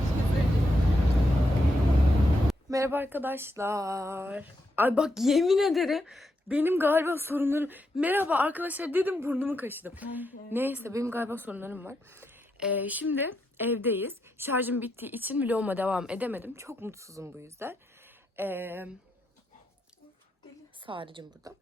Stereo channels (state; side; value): normal; both; correlation 0.82